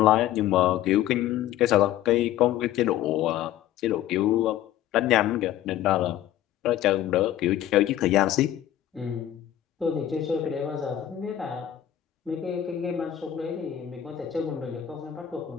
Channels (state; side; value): quieter; right; 12.0 dB